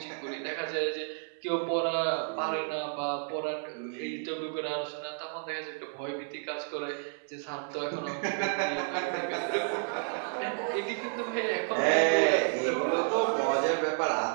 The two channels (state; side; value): silent; left; 57 dB below the other